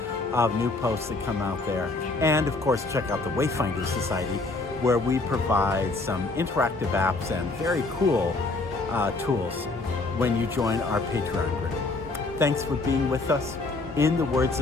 of new posts that come out there. And of course, check out the Wayfinder Society, where we provide some interactive apps and very cool tools when you join our Patreon group. Thanks for being with us. In the words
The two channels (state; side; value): quieter; right; 3.4 dB